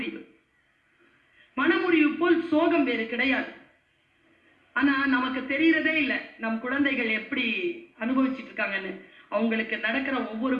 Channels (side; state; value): both; identical; correlation 1.00